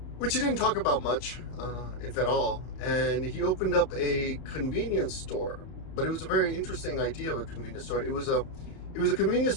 which he didn't talk about much, if at all. And he opened up a convenience store, but it was a very interesting idea of a convenience store. It was a convenience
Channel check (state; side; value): late; right; 31 ms